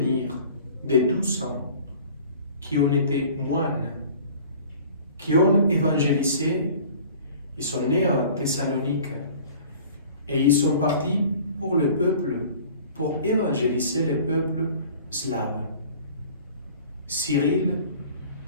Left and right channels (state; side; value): inverted; both; correlation -0.47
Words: des 12 ans qui ont été moines, qui ont évangélisé. Ils sont nés à Thessalonique et ils sont partis pour le peuple, pour évangéliser le peuple slave. Cyril